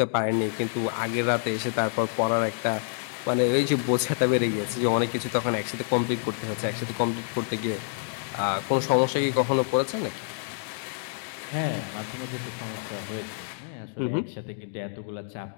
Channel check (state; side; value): silent; right; 60 dB below the other